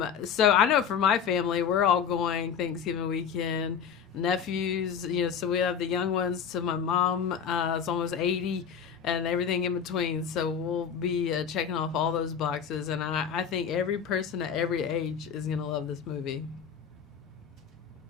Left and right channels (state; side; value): quieter; right; 7.4 dB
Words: So I know for my family, we're all going Thanksgiving weekend. Nephews, so we have the young ones to my mom. It's almost 80, and everything in between. So we'll be checking off all those boxes, and I think every person at every age is gonna love this movie.